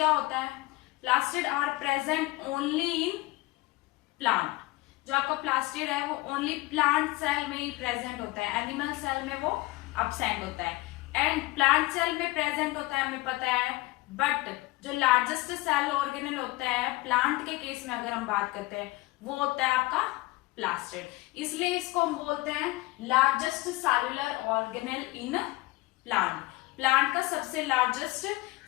होता है? Plastid are present only in plant. जो आपका प्लास्टिड है वो ओनली प्लांट सेल में ही प्रेजेंट होता है. एनिमल सेल में वो अब्सेंट होता है. एंड प्लांट सेल में प्रेजेंट होता है, हमें पता है. बट जो लार्जेस्ट सेल ऑर्गेनेल होता है प्लांट के केस में अगर हम बात करते हैं, वो होता है आपका प्लास्टिड. इसलिए इसको हम बोलते हैं largest cellular organelle in plant. Plant का सबसे लार्जेस्ट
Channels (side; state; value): right; quieter; 20.3 dB